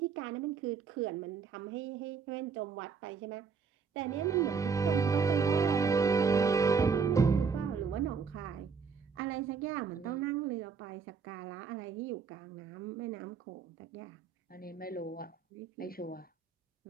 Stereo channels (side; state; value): left; quieter; 5.7 dB